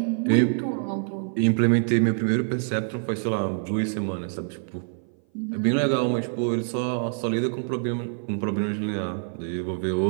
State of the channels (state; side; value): silent; left; 57 dB below the other